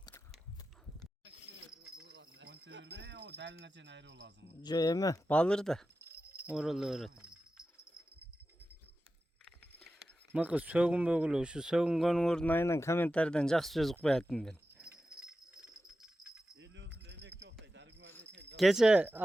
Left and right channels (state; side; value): normal; both; correlation 0.93